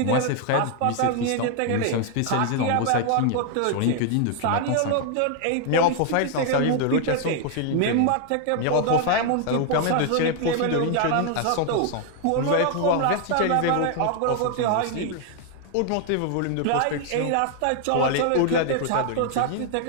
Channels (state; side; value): different; both; correlation 0.00